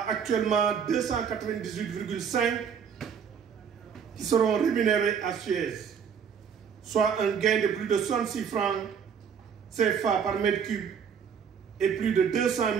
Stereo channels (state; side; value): quieter; left; 7.2 dB